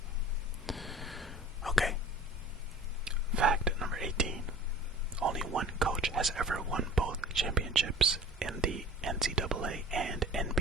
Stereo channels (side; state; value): both; normal; correlation 0.43